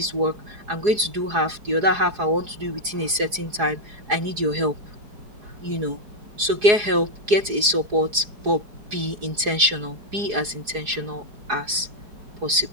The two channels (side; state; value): left; late; 4.8 ms